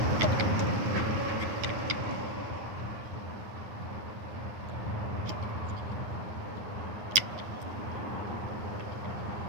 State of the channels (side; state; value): left; late; 9.6 ms